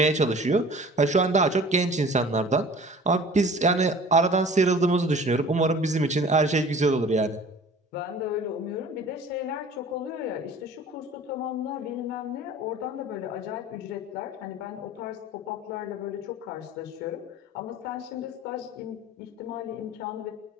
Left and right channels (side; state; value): both; normal; correlation 0.45